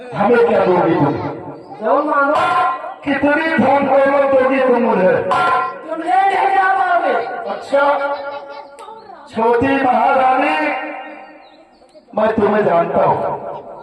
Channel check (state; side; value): identical; both; correlation 1.00